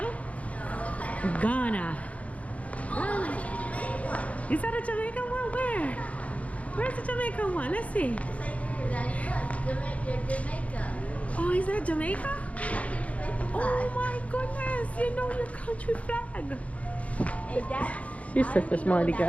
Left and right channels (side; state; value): right; late; 0.066 ms